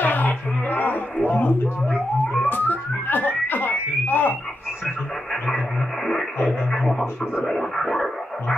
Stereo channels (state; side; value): normal; both; correlation 0.86